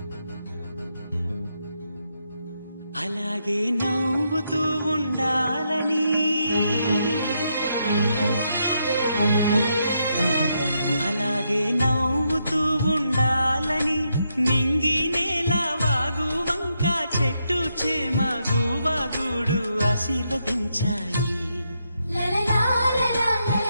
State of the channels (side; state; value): both; inverted; correlation -0.80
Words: అలాగే నవ్వుతూ ఉండాలని, అలాగే నవ్వుతూ ఉండాలని నింగి నేల వాగు వంక చెట్టు చేమ గువాగుడు ఆశీర్వదించాయి.